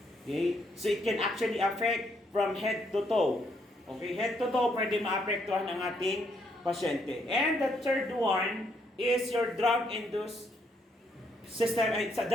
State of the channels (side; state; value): both; normal; correlation 0.73